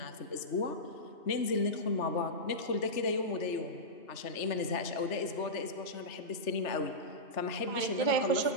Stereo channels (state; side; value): late; right; 3.3 ms